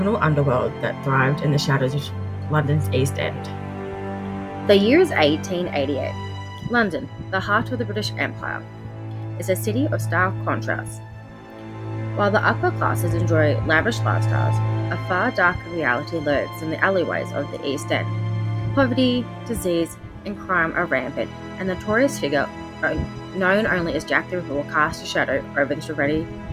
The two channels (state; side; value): identical; both; correlation 1.00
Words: underworld that thrived in the shadows of London's East End. The year is 1888. London, the heart of the British Empire, is a city of stark contrasts. While the upper classes enjoy lavish lifestyles, a far darker reality lurks in the alleyways of the East End. Poverty, disease, and crime are rampant, and the notorious figure, known only as Jack the Ripper, will cast a shadow over this already